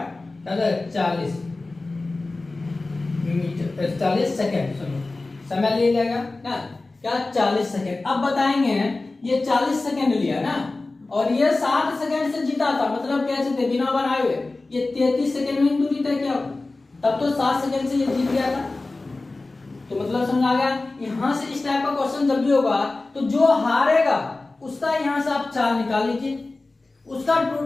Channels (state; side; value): quieter; right; 3.2 dB